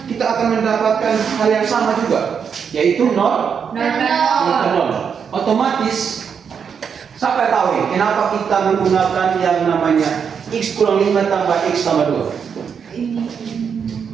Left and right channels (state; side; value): quieter; left; 6.9 dB